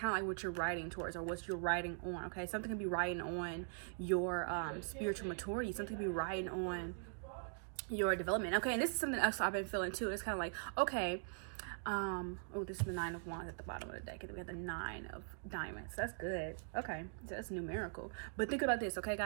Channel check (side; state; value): left; silent; digital silence